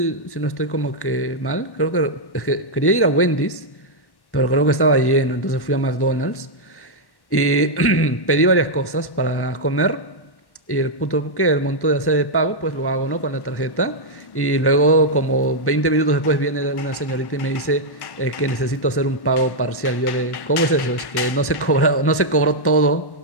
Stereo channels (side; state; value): right; late; 1.1 ms